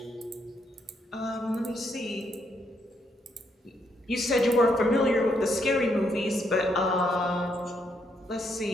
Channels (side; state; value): both; normal; correlation 0.75